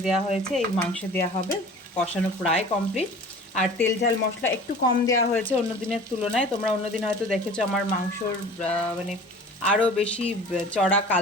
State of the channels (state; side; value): normal; both; correlation 0.42